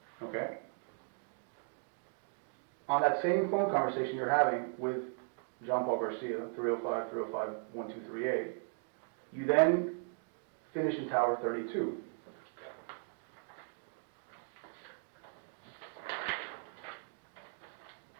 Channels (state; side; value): silent; left; 53 dB below the other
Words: Okay? On that same phone conversation you're having with John Paul Garcia, 305-305-1238, you then finish in Tower 32.